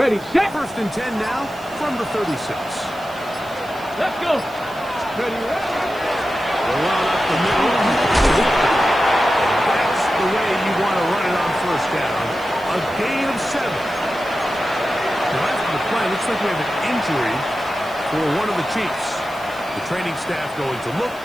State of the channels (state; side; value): noise; right; hiss, 22 dB below the sound